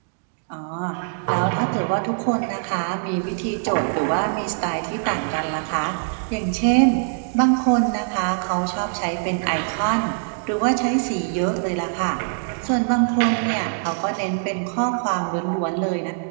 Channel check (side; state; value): left; silent; digital silence